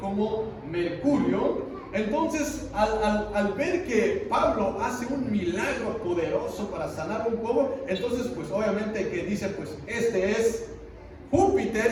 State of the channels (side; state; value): both; identical; correlation 1.00